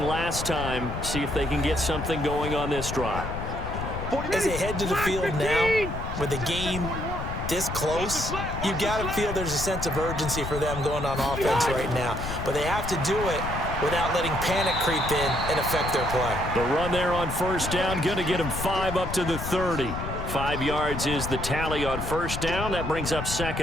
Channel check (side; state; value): left; noise; rumble, 6 dB below the sound